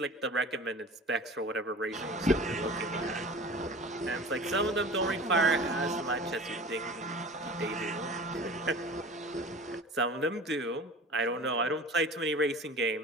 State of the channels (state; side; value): normal; both; correlation 0.39